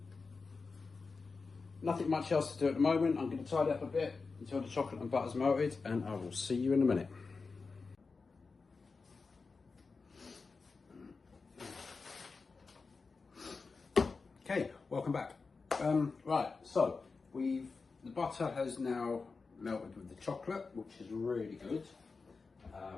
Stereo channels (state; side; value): quieter; right; 4.4 dB